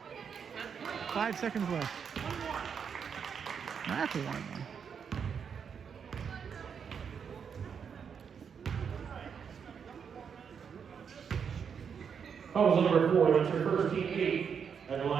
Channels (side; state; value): left; quieter; 6.9 dB